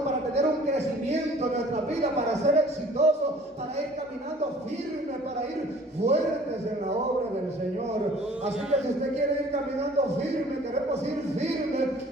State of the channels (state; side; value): normal; both; correlation 0.51